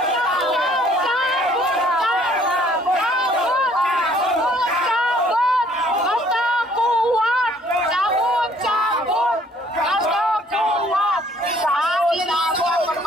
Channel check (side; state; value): both; normal; correlation 0.60